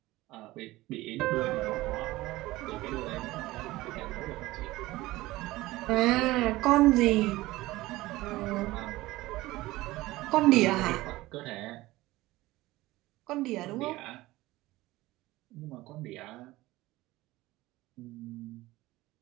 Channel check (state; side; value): quieter; left; 18.4 dB